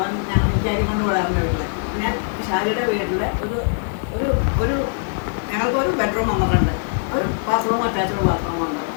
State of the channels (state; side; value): silent; right; digital silence